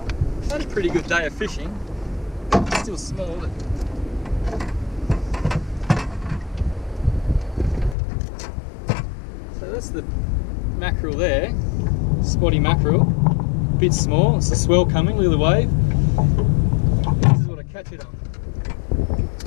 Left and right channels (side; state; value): right; drops out; at 8.0 s